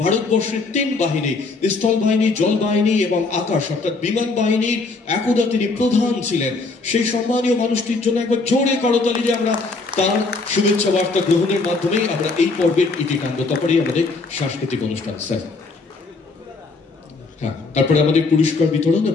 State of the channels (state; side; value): quieter; right; 3.8 dB